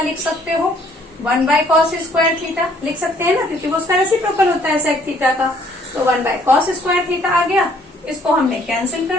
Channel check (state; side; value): normal; both; correlation 0.62